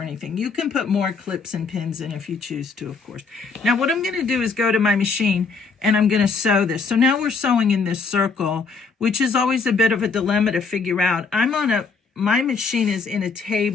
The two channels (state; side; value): quieter; right; 4.8 dB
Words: anything. You can put more clips and pins in if you choose to, of course. Now what I'm going to do is go to my machine and I'm going to sew this. So now we're sewing in this circle, which is always a bit of a dilemma to figure out. My machine is in a